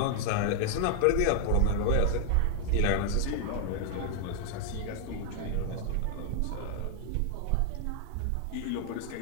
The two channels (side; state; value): both; different; correlation 0.00